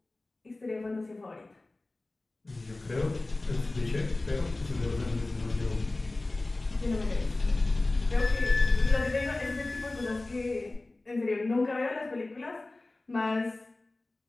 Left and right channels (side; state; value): right; quieter; 3.0 dB